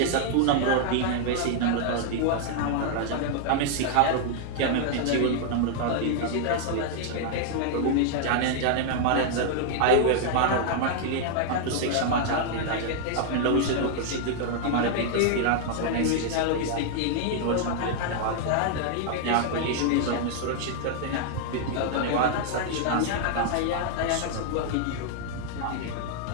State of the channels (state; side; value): different; both; correlation 0.00